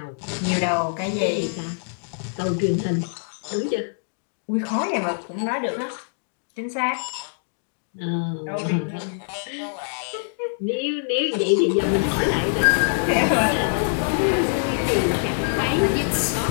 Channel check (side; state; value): right; silent; digital silence